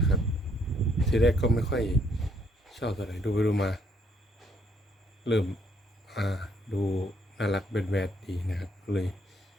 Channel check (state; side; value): normal; both; correlation 0.69